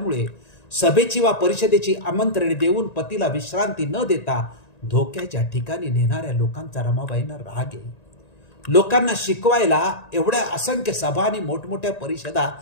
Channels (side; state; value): right; late; 1.9 ms